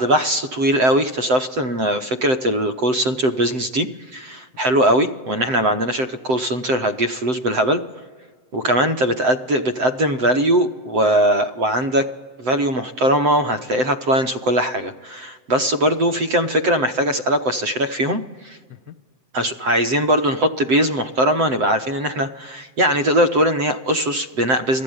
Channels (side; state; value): left; late; 7.8 ms